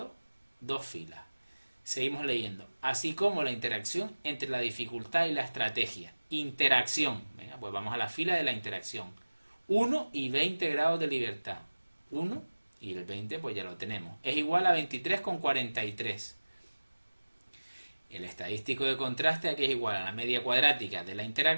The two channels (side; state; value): both; inverted; correlation -1.00